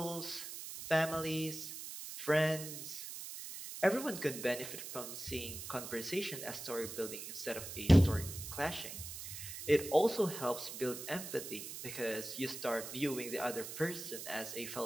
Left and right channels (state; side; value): noise; right; hiss, 9 dB below the sound